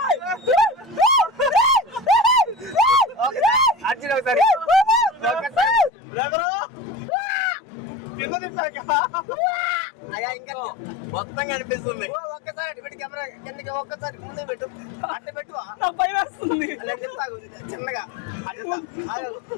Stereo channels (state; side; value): drops out; right; at 5.9 s